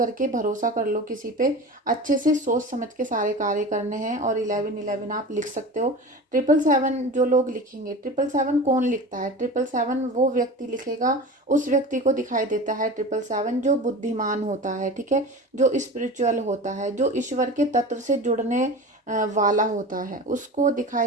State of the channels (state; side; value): normal; both; correlation 0.32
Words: भरोसा कर लो किसी पे। अच्छे से सोच समझ के सारे कार्य करने हैं। और 1111 आप लिख सकते हो। 777 जो लोग लिखेंगे, 777 कौन लिखता है? 777 वो व्यक्ति लिखेगा, उस व्यक्ति को दिखाई देता है 777 जो बुद्धिमान होता है, ठीक है, जो स्पिरिचुअल होता है, जो ईश्वर के तत्व से जुड़ने वाला होता है, उसको